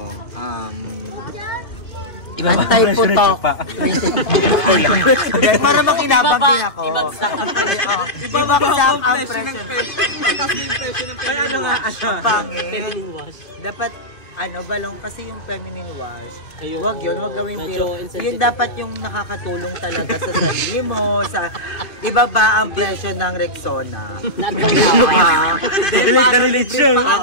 Anti-putok. Para makinabang din ako. Ibabagsak ang presyo. Ano nga? Ang pangit. Dapat balong kasi yung feminine wash. Wag yun, wag gawin pero yun dapat yung nakakatulong talaga sa sarili mo, sa ibaba ang presyo ng Rexona.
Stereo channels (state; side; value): late; right; 2.7 ms